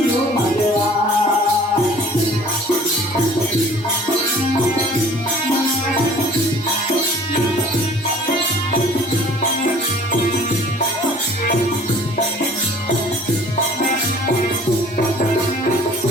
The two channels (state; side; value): normal; both; correlation 0.50